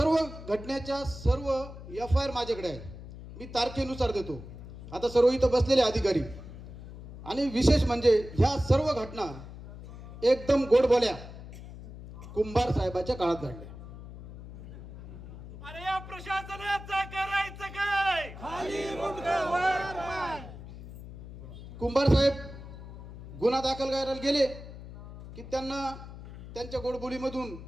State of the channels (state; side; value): noise; left; hum, 14 dB below the sound